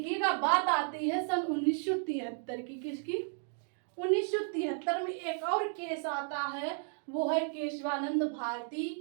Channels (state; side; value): silent; left; 55 dB below the other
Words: बात आती है सन 1973 की। किसकी, 1973 में एक और केस आता है, वो है केशवानंद